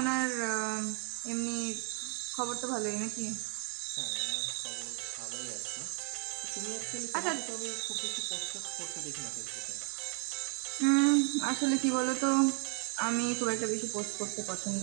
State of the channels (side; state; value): left; quieter; 39.3 dB